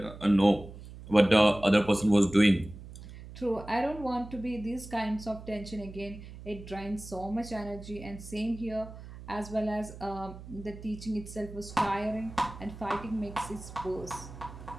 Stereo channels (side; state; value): right; noise; hum, 14 dB below the sound